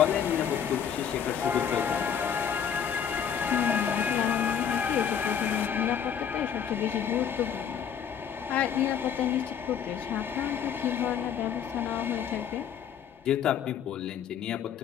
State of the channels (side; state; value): right; quieter; 8.2 dB